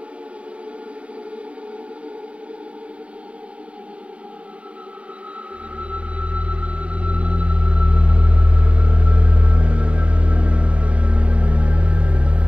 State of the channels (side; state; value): left; late; 0.063 ms